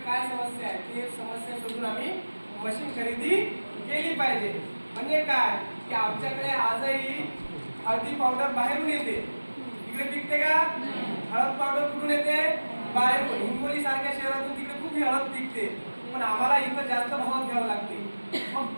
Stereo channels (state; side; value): inverted; both; correlation -1.00